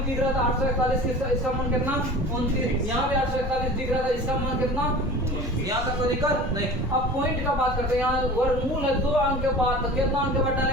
दिख रहा था 841 इसका मान कितना? 29। यहाँ भी 841 दिख रहा था, इसका मान कितना? यहाँ तक कोई दिक्कत नहीं। अब पॉइंट का बात करते हैं। यहाँ वर्गमूल है 2 अंक के बाद, तो कितना अंक के बाद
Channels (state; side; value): normal; both; correlation 0.38